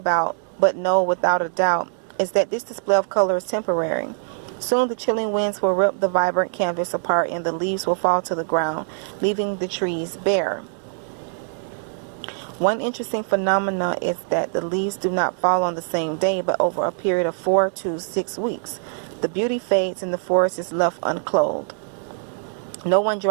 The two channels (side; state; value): left; silent; 60 dB below the other